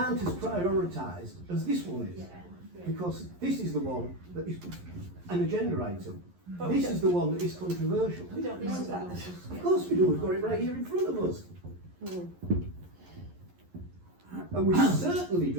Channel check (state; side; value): late; left; 11 ms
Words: as prioritised as this one is, because this is the one that is an agenda item. But This is the one that is controversial. We don't know that. Of course we do, we've got it right here in front of us. And we certainly